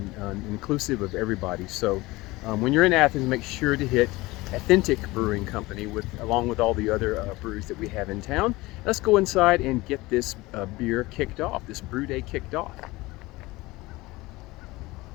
inclusive of everybody. So when you're in Athens, make sure to hit Athentic Brewing Company along with all the other breweries that we have in town. Let's go inside and get this beer kicked off, this brew day kicked off.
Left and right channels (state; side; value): quieter; right; 20.7 dB